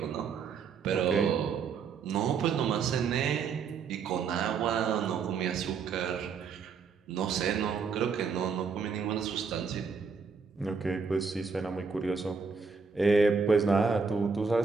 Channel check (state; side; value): quieter; left; 5.5 dB